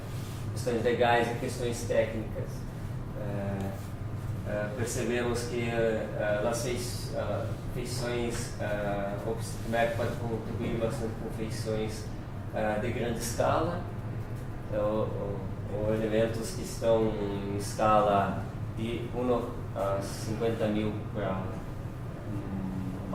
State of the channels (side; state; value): both; identical; correlation 1.00